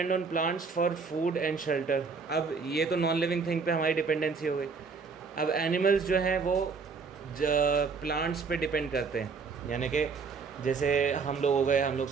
on plants for food and shelter. अब ये तो नॉन लिविंग थिंग पे हमारी डिपेंडेंसी हो गई. अब एनिमल्स जो हैं वो प्लांट्स पे डिपेंड करते हैं, यानी कि जैसे हम लोग हो गए, हम लोग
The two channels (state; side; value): quieter; left; 5.0 dB